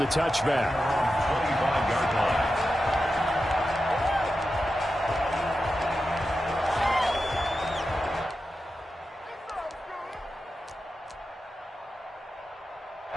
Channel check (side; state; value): both; normal; correlation 0.91